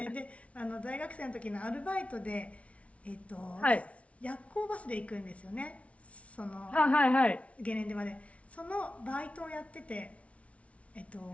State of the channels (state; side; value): late; right; 0.064 ms